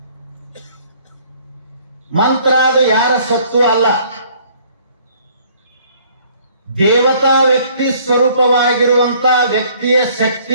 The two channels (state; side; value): inverted; both; correlation -0.59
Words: ಮಂತ್ರ ಅದು ಯಾರ ಸತ್ತು ಅಲ್ಲ, ದೇವತಾ ವ್ಯಕ್ತಿ ಸ್ವರೂಪವಾಗಿರುವಂತ ವ್ಯಕ್ತಿಯ